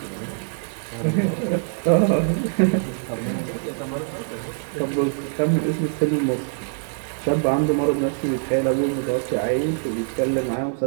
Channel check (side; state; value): left; silent; digital silence